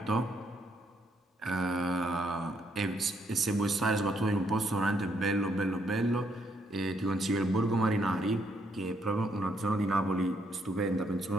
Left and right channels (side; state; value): both; normal; correlation 0.73